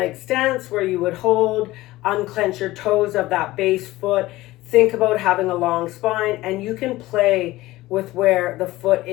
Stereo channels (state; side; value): quieter; right; 17.8 dB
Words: stance where you would hold, unclench your toes of that base foot. Think about having a long spine, and you can play with where the foot